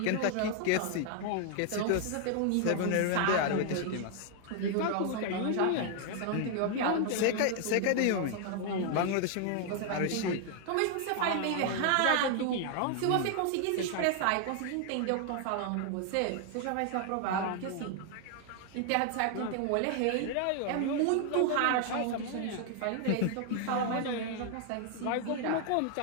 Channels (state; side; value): different; both; correlation 0.00